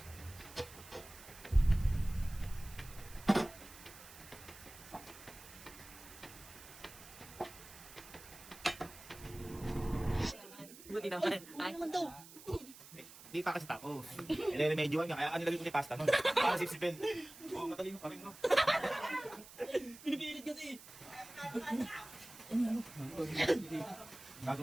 Buti naman. Ay, naman daw. Hindi pa kasi tapos. Nire-remedyoan nga, kaya kanilagay ko ni pasta nun. Para sipsipin. Oo, matalino pa rin, no? Pinipilit kasi.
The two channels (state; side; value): noise; right; hiss, 17 dB below the sound